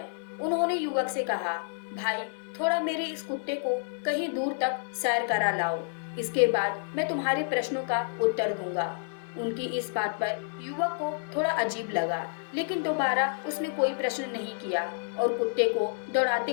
उन्होंने युवक से कहा, भाई, थोड़ा मेरे इस कुत्ते को कहीं दूर तक सैर करा लाओ। इसके बाद मैं तुम्हारे प्रश्नों का उत्तर दूंगा। उनकी इस बात पर युवक को थोड़ा अजीब लगा, लेकिन दोबारा उसने कोई प्रश्न नहीं किया और कुत्ते को दौड़ाते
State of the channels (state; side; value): silent; right; 56 dB below the other